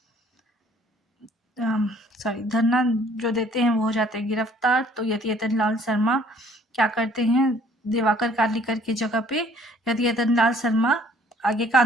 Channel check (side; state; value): both; normal; correlation 0.58